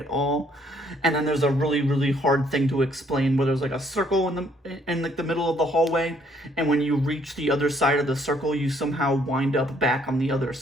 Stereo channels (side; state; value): both; normal; correlation 0.66